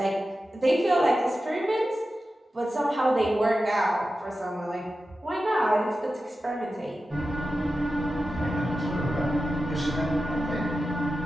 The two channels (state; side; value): normal; both; correlation 0.93